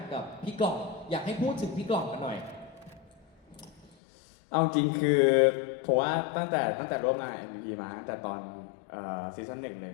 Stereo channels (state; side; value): drops out; right; at 4.0 s